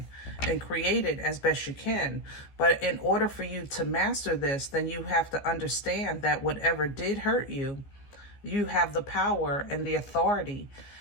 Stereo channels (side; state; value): right; late; 15 ms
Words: and create it as best you can. But in order for you to master this, then you have to understand that whatever did hurt you, you have the power and the authority